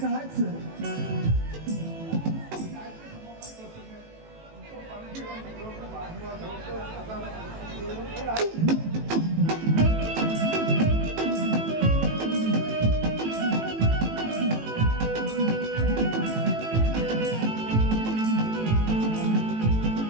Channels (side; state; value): left; late; 18 ms